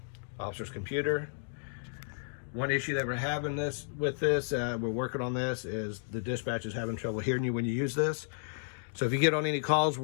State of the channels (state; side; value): silent; right; digital silence